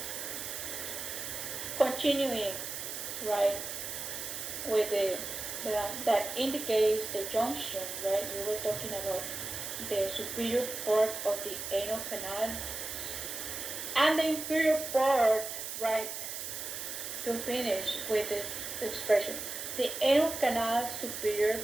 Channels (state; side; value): noise; right; hiss, 6 dB below the sound